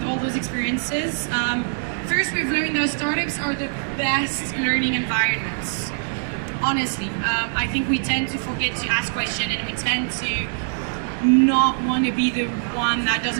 all those experiences. First, we've learned that startups are the best learning environments. Honestly, I think we tend to forget to ask questions, and we tend to not want to be the one that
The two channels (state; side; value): silent; left; 63 dB below the other